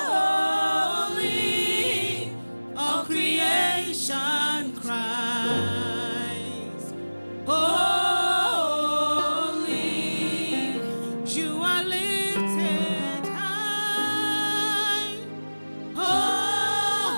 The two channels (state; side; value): inverted; both; correlation -1.00